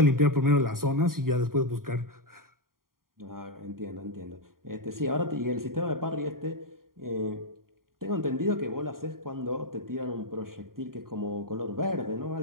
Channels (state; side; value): late; left; 0.91 ms